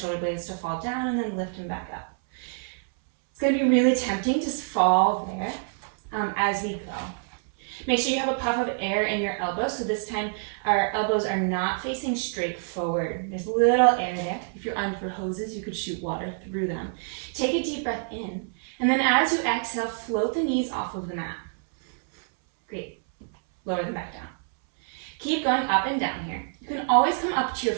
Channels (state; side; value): silent; left; 60 dB below the other